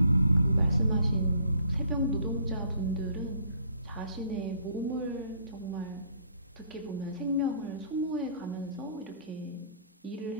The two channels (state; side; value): inverted; both; correlation -0.61